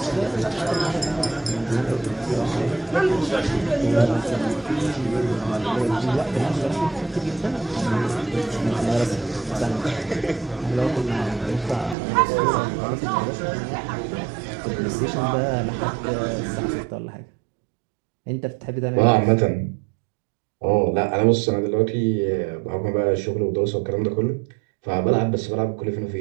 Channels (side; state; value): left; drops out; at 12.0 s